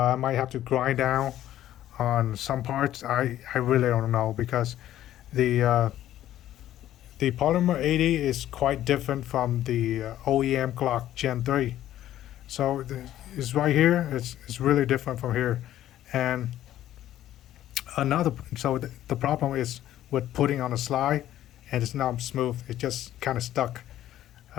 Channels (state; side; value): quieter; right; 12.7 dB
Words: might have to grind down on some parts. I really don't know because the uh, the Polymer 80 is quite different from the OEM clock Gen 3. So it's right here. It's really different from here, and the problem is with putting on a slide, and it's not smooth. It just kind of stuck.